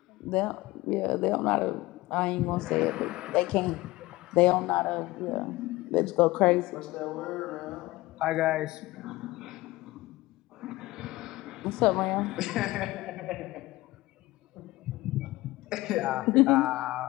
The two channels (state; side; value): quieter; right; 19.3 dB